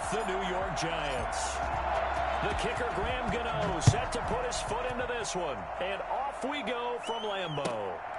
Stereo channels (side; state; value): both; identical; correlation 1.00